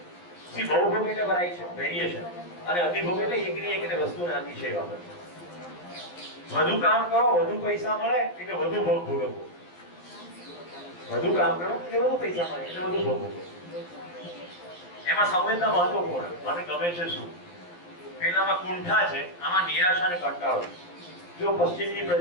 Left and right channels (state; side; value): late; right; 11 ms